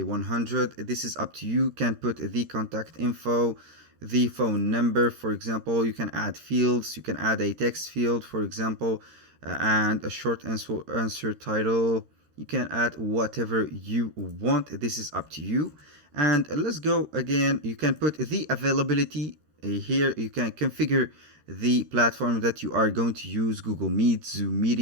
100. This is up to you. You can put the contact info, the phone number, for example. You can add fields. You can add a text field, for example, and a short answer title. You can add whatever you want. This is up to you. And let's go again. You can put the availability here. You can configure the platform that you are going to use: Google Meet, Zoom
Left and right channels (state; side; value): late; left; 13 ms